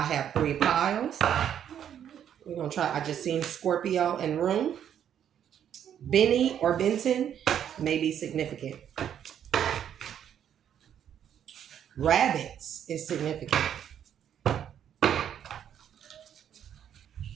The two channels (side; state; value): left; quieter; 9.4 dB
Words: have 3 piles. We're going to try, I just seen Scorpio and Room. Benny or Benton may be significant. Rabbits is significant.